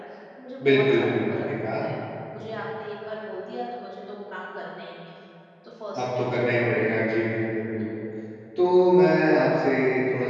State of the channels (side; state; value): both; identical; correlation 1.00